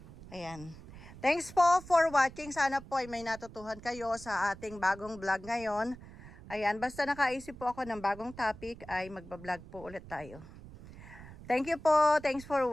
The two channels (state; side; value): noise; right; rumble, 17 dB below the sound